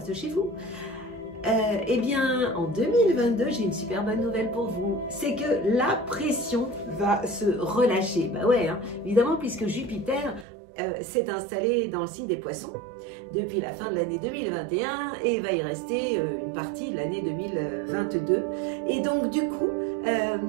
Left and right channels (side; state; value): left; drops out; at 10.5 s